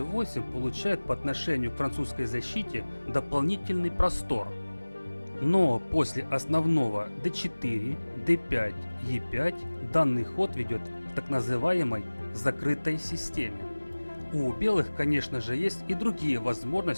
получает по отношению к французской защите дополнительный простор. Но после основного d4, d5, e5 данный ход ведет к так называемой закрытой системе. У белых, конечно же, есть и другие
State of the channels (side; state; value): both; inverted; correlation -1.00